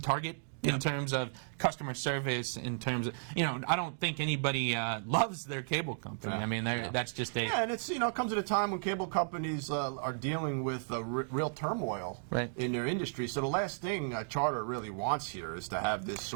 in terms of customer service. In terms of I don't think anybody loves their cable company. I mean, that's just and it's it comes at a time when cable companies are dealing with real turmoil in their industry. So the last thing Charter really wants here is to have this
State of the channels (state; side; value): silent; left; digital silence